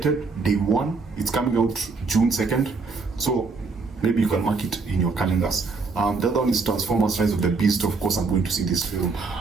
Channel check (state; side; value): quieter; left; 4.3 dB